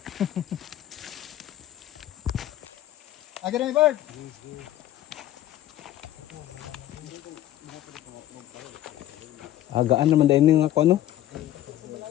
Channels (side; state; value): right; quieter; 13.2 dB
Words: Agad na bird. Gaan naman dahil nga ako ano.